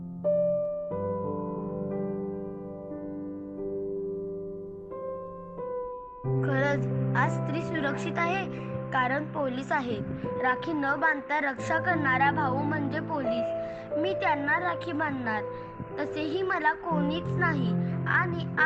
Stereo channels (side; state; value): both; identical; correlation 1.00